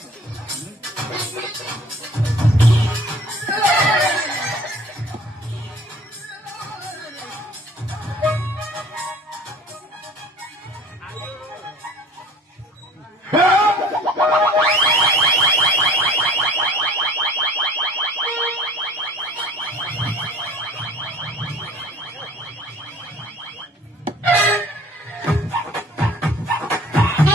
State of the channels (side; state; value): both; normal; correlation 0.49